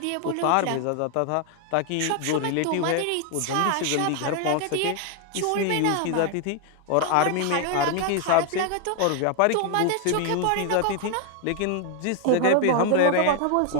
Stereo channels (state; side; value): different; both; correlation 0.00